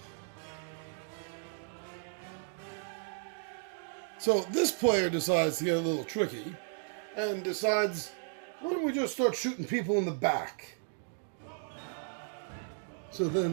So this player decides to get a little tricky and decides, why don't we just start shooting people in the back? So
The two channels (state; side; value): silent; left; digital silence